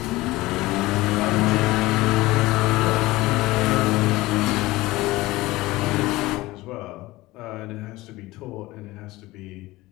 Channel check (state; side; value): quieter; right; 19.3 dB